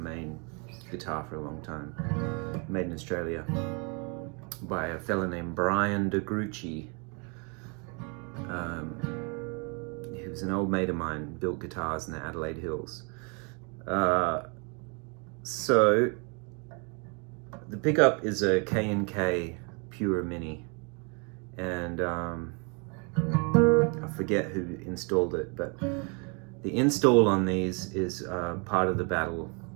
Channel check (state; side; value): quieter; left; 34.4 dB